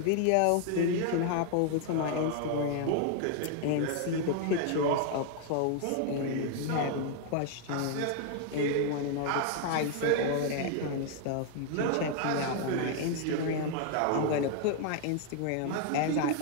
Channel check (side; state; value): both; different; correlation 0.00